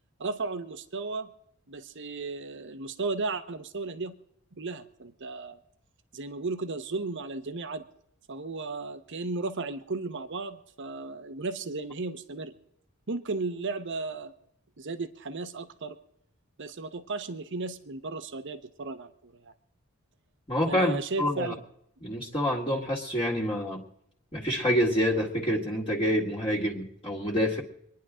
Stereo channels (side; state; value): both; normal; correlation 0.30